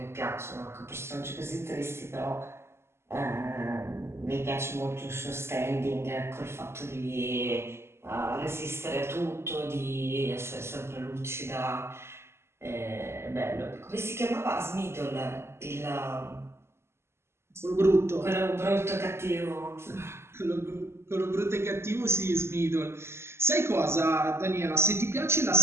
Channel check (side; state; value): left; late; 0.12 ms